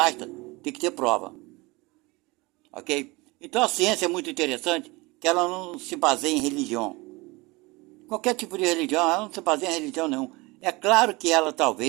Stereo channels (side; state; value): left; quieter; 24.0 dB